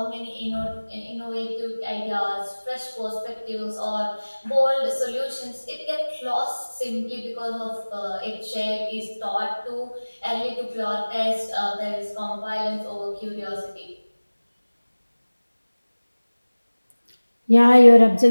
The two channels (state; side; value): inverted; both; correlation -1.00